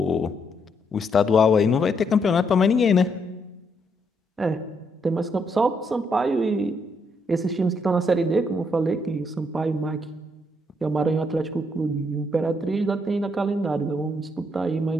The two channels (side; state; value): both; normal; correlation 0.75